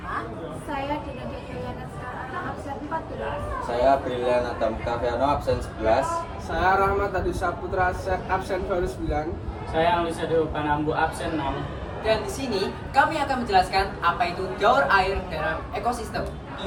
Saya Dina Diana Sekarang absen 14. Saya Brilian Adam Kaviano absen 11. Saya Rahmat Adi Saputra absen baru 9. Saya Alisa Dewa Panambu absen 6. Dan di sini kami akan menjelaskan apa itu daur air dalam ekosistem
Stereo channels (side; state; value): both; identical; correlation 1.00